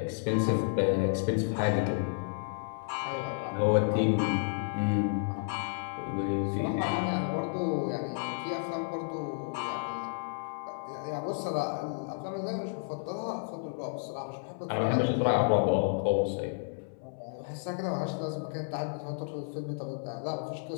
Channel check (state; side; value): silent; right; 57 dB below the other